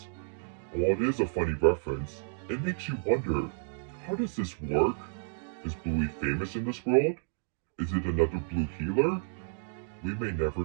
While it is a funny reference, it makes you wonder, how does this work? Is Bluey famous in this world? Is it another Blue Healer? We may never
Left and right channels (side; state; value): left; silent; digital silence